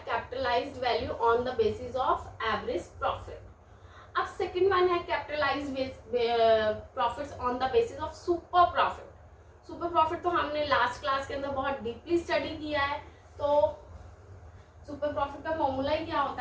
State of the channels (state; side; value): identical; both; correlation 1.00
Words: capitalised value on the basis of average profit. अब सेकंड वन है capitalised profits on the basis of super profit. Super profit तो हमने लास्ट क्लास के अंदर बहुत डीपली स्टडी किया है। तो सुपर प्रॉफिट का फॉर्मूला ही क्या